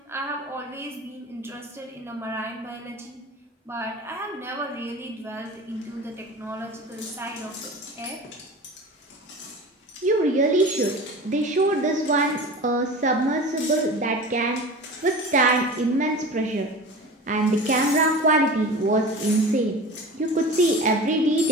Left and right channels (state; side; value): normal; both; correlation 0.35